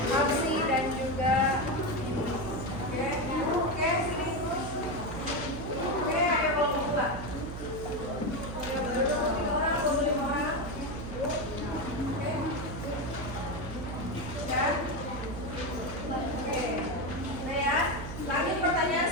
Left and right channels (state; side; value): noise; right; hum, 8 dB below the sound